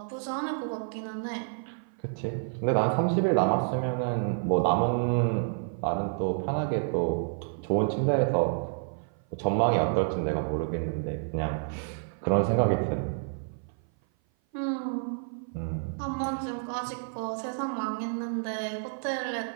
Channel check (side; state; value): left; silent; 55 dB below the other